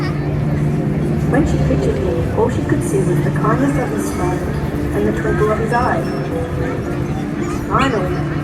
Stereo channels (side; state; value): both; identical; correlation 1.00